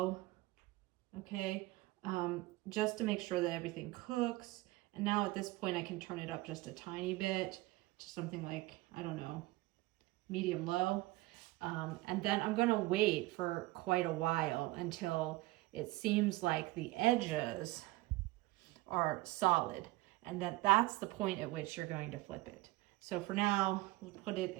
okay, just to make sure that everything cooks. And now at this point I can turn it up just a tiny bit to something like, I don't know, medium low. And then I'm going to wait for quite a while until it seems like the edges are solid. And that's the point at which you're going to flip it. So for now, we'll put it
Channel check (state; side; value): quieter; left; 20.0 dB